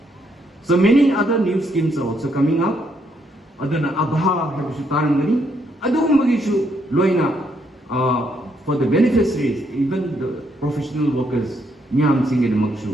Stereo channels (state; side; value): normal; both; correlation 0.74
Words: So many other new schemes are also coming up. Adana abha habisutarangani. Adung magishu loina for the beneficiaries, even the professional workers. Nyam singed